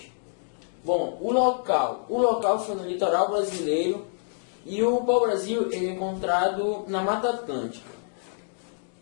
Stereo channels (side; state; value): right; silent; digital silence